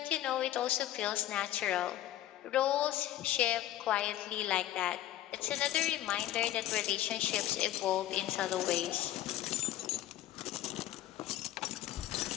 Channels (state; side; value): quieter; right; 13.5 dB